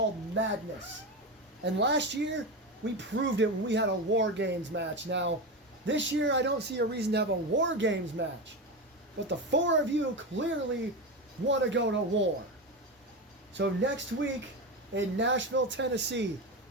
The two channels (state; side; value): normal; both; correlation 0.19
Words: Madness. And last year, we proved it when we had a War Games match. Now, this year I don't see a reason to have a War Games match. But the four of you clearly want to go to war. So next week in Nashville, Tennessee,